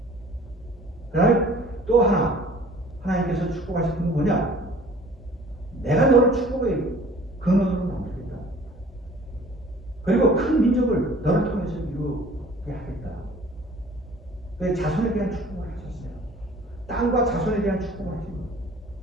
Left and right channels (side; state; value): both; normal; correlation 0.50